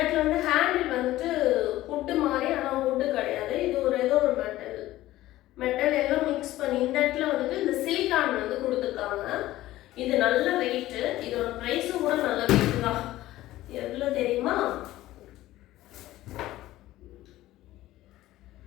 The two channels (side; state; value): right; quieter; 15.7 dB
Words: வந்து ஹேண்டில் வந்துட்டு புட்டு மாதிரி, ஆனால் புட்டு கிடையாது. இது ஒரு ஏதோ ஒரு மெட்டல் எல்லாம் மிக்ஸ் பண்ணி இந்த இடத்துல வந்துட்டு இந்த சிலிக்கான் வந்து கொடுத்துருக்காங்க. இது நல்ல வெயிட்டு. இதோட ப்ரைஸும் கூட நல்ல வெயிட்டு தான். எவ்வளோ தெரியுமா?